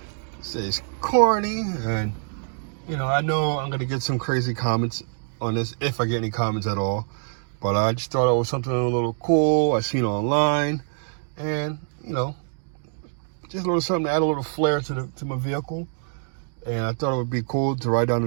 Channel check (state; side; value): silent; left; digital silence